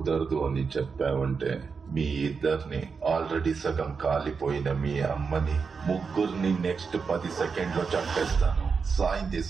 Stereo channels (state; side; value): quieter; left; 5.3 dB